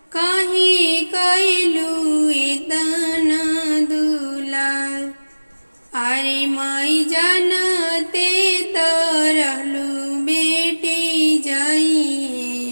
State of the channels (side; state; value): both; inverted; correlation -1.00